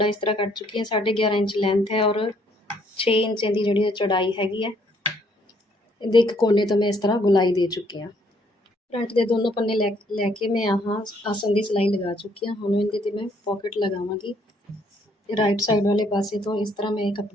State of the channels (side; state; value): both; normal; correlation 0.67